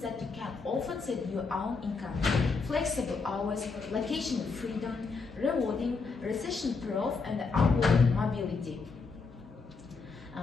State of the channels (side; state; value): right; quieter; 4.5 dB